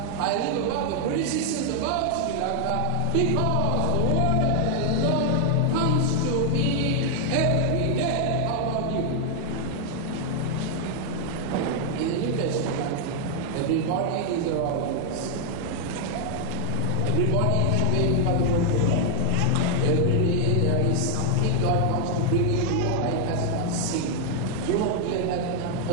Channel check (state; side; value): different; both; correlation 0.00